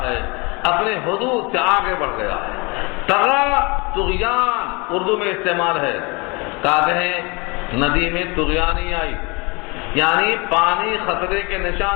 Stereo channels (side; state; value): right; quieter; 28.2 dB